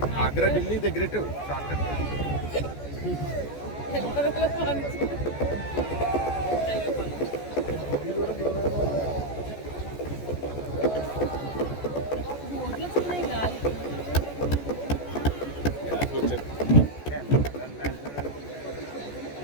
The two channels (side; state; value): right; late; 14 ms